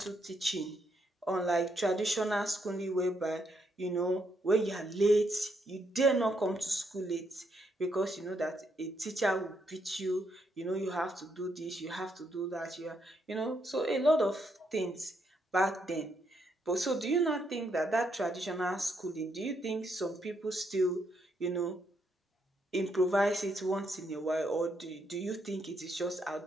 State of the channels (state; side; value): normal; both; correlation 0.77